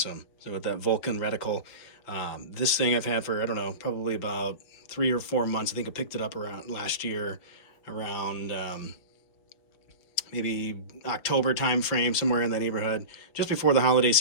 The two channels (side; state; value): right; late; 5.9 ms